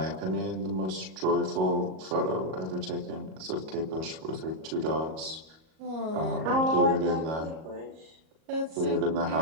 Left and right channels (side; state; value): left; late; 38 ms